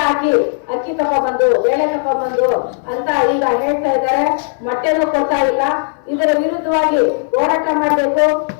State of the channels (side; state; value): right; silent; digital silence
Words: ಹಾಕಿ ಅಕ್ಕಿ ತಗೊಂಡ್ಬಂದು, ಬೇಳೆ ತಗೊಂಡ್ಬಂದು ಅಂತ ಈಗ ಹೇಳ್ತಾ ಇದ್ದಾರೆ. ಮೊಟ್ಟೆನೂ ಕೊಡ್ತಾ ಇಲ್ಲ. ಇದರ ವಿರುದ್ಧವಾಗಿ ಹೋರಾಟ ಮಾಡಬೇಕು.